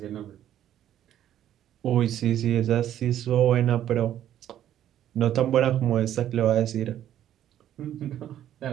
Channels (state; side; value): quieter; left; 11.4 dB